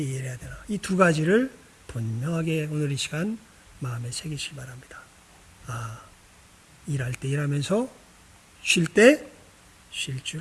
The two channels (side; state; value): both; identical; correlation 1.00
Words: 일해야 되나? 이 두 가지를 분명하게 오늘 이 시간 마음에 새기시기 바랍니다. 일할 때 일하면서 쉴 때 쉴